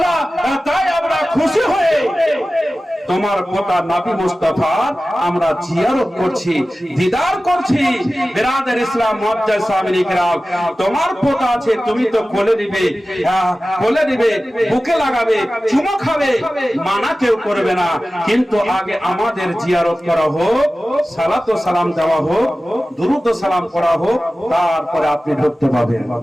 তাই আমরা খুশি হয়ে তোমার পোতা নবী মুস্তাফার আমরা জিয়ারত করছি, দিদার করছি। বিরাদার ইসলাম মুআজ্জাজ সামিন ইকরাম, তোমার পোতা আছে, তুমি তো কোলে নিবে, কোলে নিবে, বুকে লাগাবে, চুমো খাবে, মানা কেউ করবে না, কিন্তু আগে আমাদের জিয়ারত করা হোক, সালাত ও সালাম দেওয়া হোক, দুরূদ ও সালাম করা হোক, তারপরে আপনি ঢুকতে পাবেন।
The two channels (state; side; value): normal; both; correlation 0.96